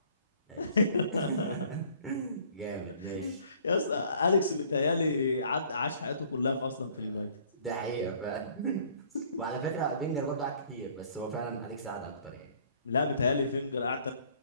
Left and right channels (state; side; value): inverted; both; correlation -0.57